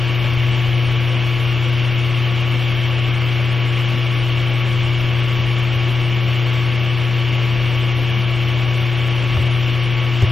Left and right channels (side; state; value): right; quieter; 3.9 dB